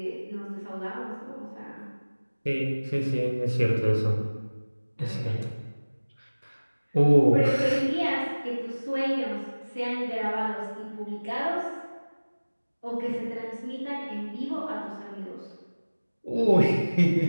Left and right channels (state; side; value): inverted; both; correlation -1.00